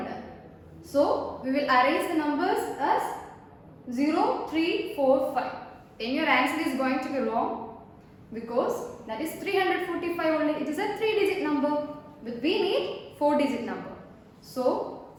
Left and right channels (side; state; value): both; identical; correlation 1.00